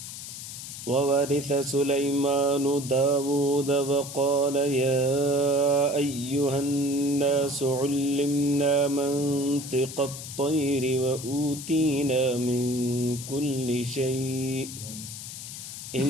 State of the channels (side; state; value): left; noise; hiss, 10 dB below the sound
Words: وورث سليمان داود وقال يا أيها الناس علمنا منطق الطير وأوتينا من كل شيء